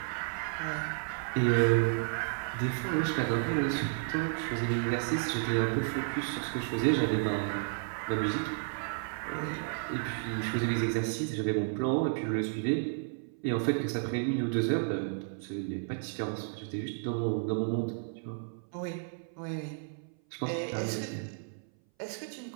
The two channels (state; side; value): silent; left; 56 dB below the other